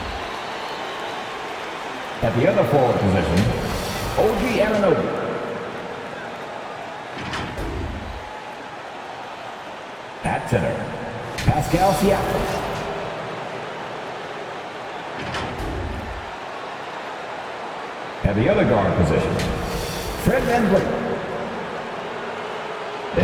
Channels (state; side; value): identical; both; correlation 1.00